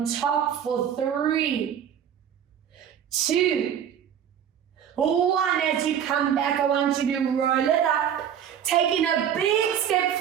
top for 3. 2. 1, as you come back, I want you to roll it up. Taking a big step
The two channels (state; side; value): quieter; left; 9.0 dB